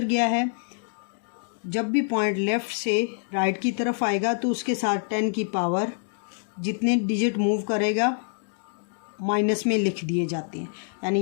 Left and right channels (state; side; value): silent; right; 61 dB below the other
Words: गया है। जब भी पॉइंट लेफ़्ट से राइट की तरफ आएगा तो उसके साथ 10 की पावर जितने डिजिट मूव करेगा माइनस में लिख दिए जाते हैं। यानी